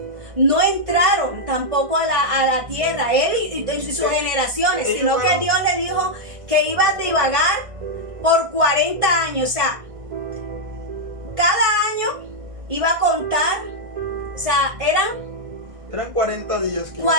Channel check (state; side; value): late; left; 1.5 ms